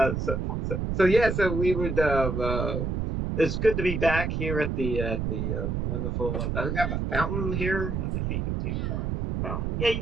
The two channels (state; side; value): noise; right; rumble, 1 dB below the sound